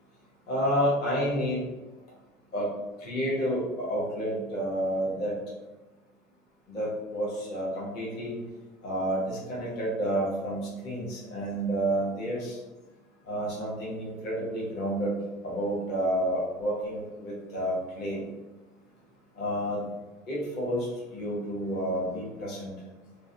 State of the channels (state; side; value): normal; both; correlation 0.38